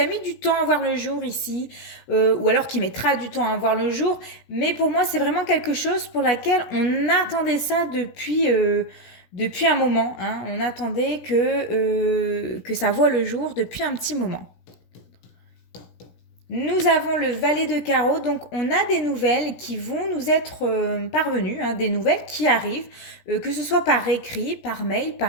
mis du temps à voir le jour ici, ou alors qui mettra du temps à voir le jour. Mais pour moi, c'est vraiment quelque chose pour laquelle on attendait ça depuis un moment. On attendait que ça voie le jour depuis un petit moment. Nous avons le valet de carreau, donc on a des nouvelles qui vont nous être parvenues, des nouvelles qui arrivent, que ce soit par écrit, par mail,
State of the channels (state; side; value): late; right; 17 ms